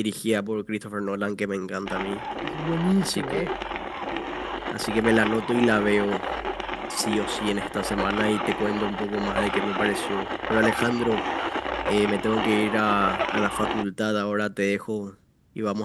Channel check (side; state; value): both; identical; correlation 1.00